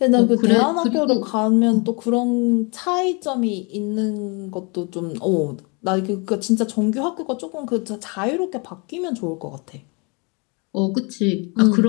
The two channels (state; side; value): quieter; right; 31.6 dB